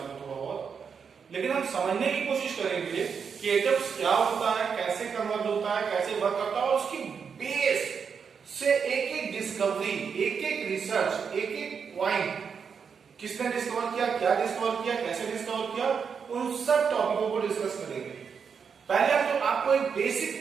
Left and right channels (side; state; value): left; quieter; 6.4 dB